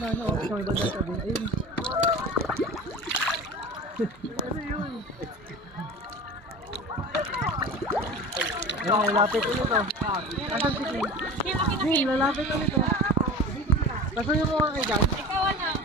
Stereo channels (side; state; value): both; normal; correlation 0.35